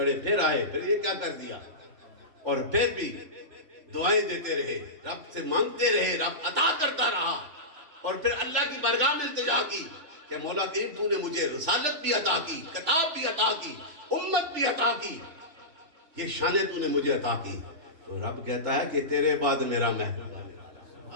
پھر آئے، پھر یہ کیا کر دیا، اور پھر بھی دعائیں دیتے رہے، رب سے مانگتے رہے، رب عطا کرتا رہا، اور پھر اللہ کی بارگاہ میں التجا کی کہ مولا کریم تو نے مجھے رسالت بھی عطا کی، کتاب بھی عطا کی، امت بھی عطا کی، یہ شانیں تو نے مجھے عطا کی۔ تو رب کہتا ہے کہ تیرے بعد میرا محبوب آنے والا،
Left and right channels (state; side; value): late; left; 3.4 ms